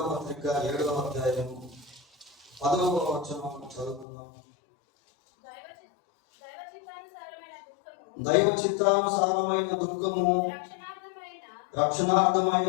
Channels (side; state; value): right; drops out; at 4.0 s